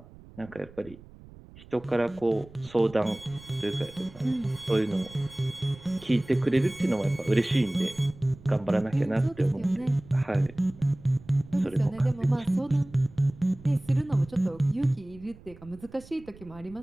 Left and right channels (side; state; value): right; noise; rumble, 21 dB below the sound